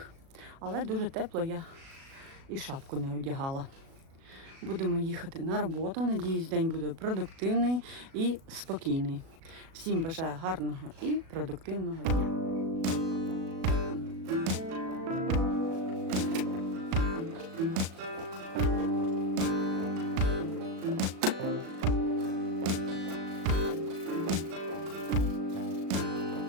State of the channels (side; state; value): left; late; 37 ms